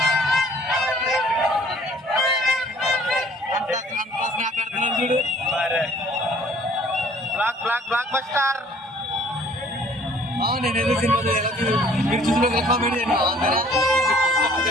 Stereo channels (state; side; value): normal; both; correlation 0.55